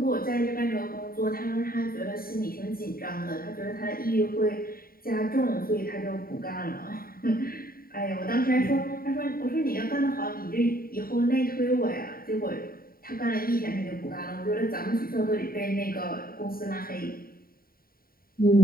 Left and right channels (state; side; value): late; right; 0.43 ms